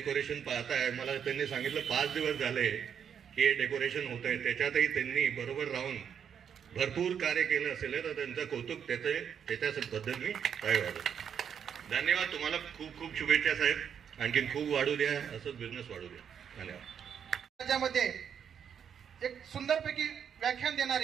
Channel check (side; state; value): left; quieter; 8.0 dB